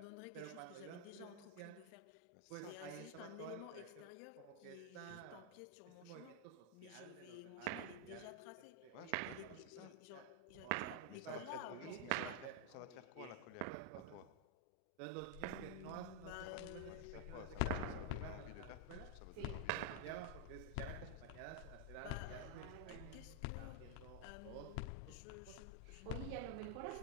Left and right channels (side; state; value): both; different; correlation 0.00